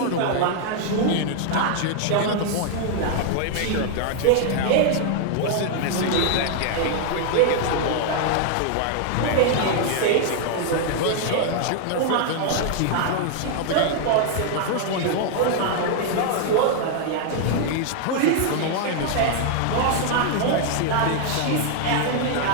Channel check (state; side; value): different; both; correlation 0.00